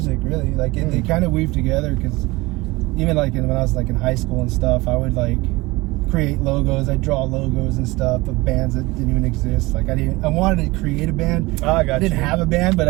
really. Like they kind of weaved together, because even like when I was like in high school and stuff, I would like create logos. I'd draw logos and stuff of bands that didn't even exist. Like I wanted to create a band. I didn't have a band, but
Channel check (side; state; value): left; quieter; 21.7 dB